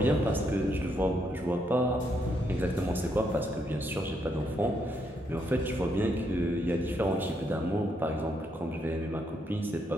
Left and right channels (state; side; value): normal; both; correlation 0.76